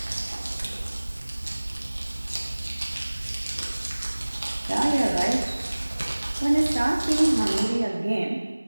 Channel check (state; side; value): inverted; both; correlation -1.00